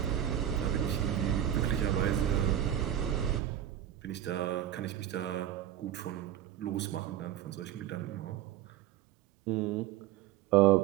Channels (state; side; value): quieter; left; 11.4 dB